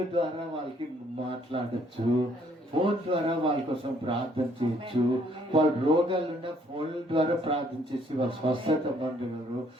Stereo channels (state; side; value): normal; both; correlation 0.65